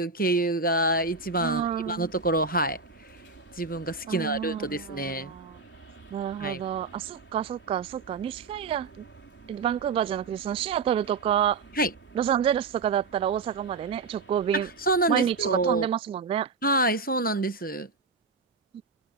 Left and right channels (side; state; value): left; quieter; 4.5 dB